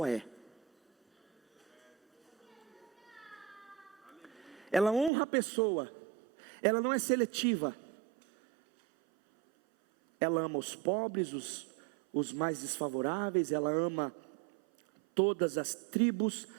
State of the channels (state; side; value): drops out; left; at 5.1 s